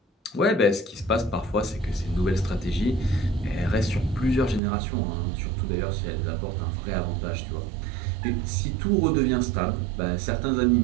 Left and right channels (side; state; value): left; drops out; at 4.6 s